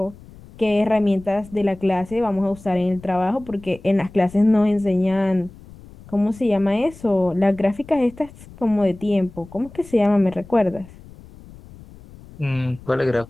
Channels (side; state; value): left; noise; rumble, 20 dB below the sound